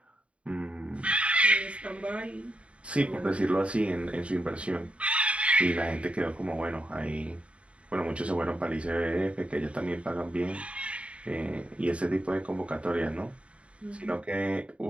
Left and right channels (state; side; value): late; left; 0.061 ms